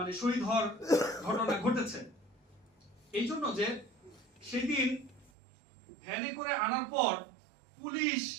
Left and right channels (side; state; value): left; drops out; at 5.3 s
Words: শহীদ হওয়ার ঘটনা ঘটেছে। এই জন্য যে সেদিন ভ্যানে করে আনার পর পুলিশ